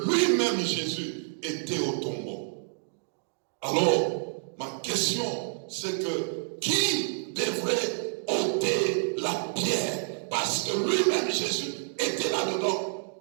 lui-même, Jésus, était au tombeau. Alors, ma question, c'est que qui devrait ôter la pierre? Parce que lui-même, Jésus, était là-dedans.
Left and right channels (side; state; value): left; silent; digital silence